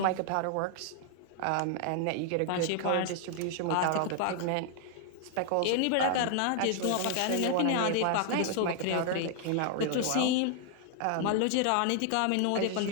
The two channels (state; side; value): different; both; correlation 0.00